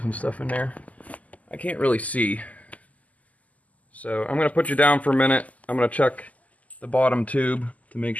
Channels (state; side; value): late; right; 0.074 ms